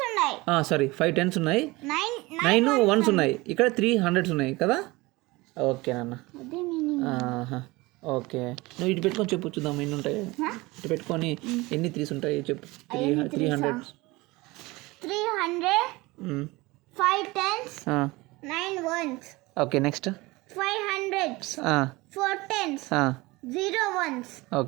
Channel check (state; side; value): quieter; left; 21.9 dB